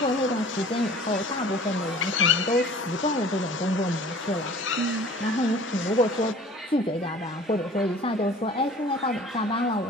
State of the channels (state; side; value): normal; both; correlation 0.47